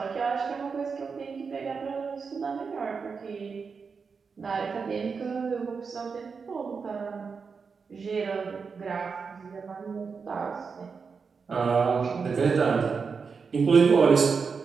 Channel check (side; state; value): left; quieter; 5.4 dB